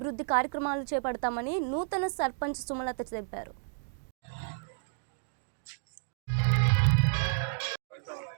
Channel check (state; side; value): silent; left; digital silence